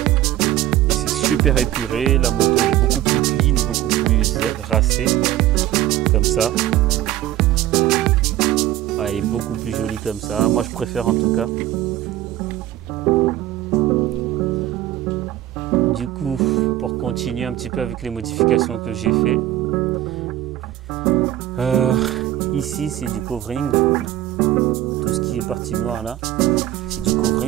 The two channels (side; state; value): left; quieter; 13.8 dB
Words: c'est super épuré. La moto elle est beaucoup plus clean, beaucoup plus racée comme ça. Ouais, elle est beaucoup plus jolie comme ça, moi je préfère en tout cas. Du coup, pour continuer un petit peu avec les modifications que j'ai fait, ici c'est du covering, tout ce qui est partie noire là, c'est du